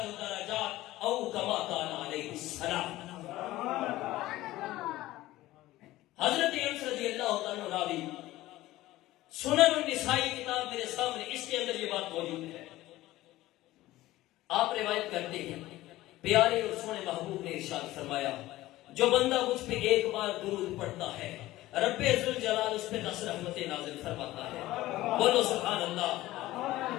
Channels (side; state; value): right; quieter; 16.7 dB